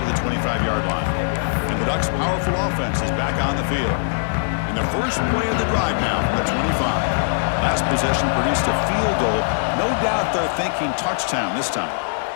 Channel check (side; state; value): right; silent; 65 dB below the other